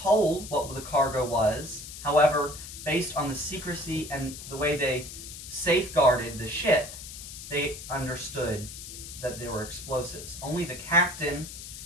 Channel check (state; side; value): noise; left; hiss, 11 dB below the sound